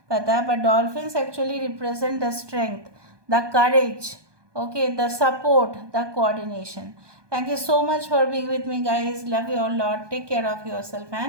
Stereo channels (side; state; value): left; late; 1.2 ms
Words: पता, but dolphins actually represent the strength, the courage, okay, the support, the coordination. Thank you so much for being with me, guys. Love you all lot. Take care of yourself